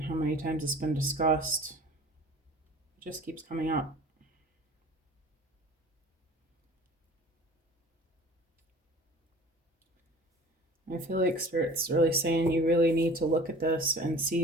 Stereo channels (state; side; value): normal; both; correlation 0.44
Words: how many times it's been discussed, it just keeps coming up. I feel like Spirit's really saying you really need to look at this and